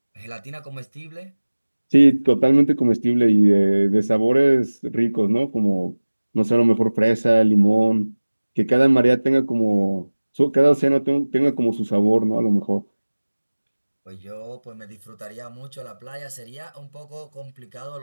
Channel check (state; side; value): inverted; both; correlation -1.00